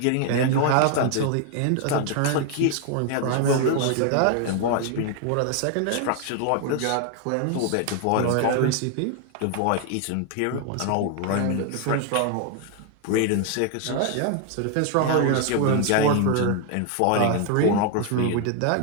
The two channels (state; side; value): different; both; correlation 0.00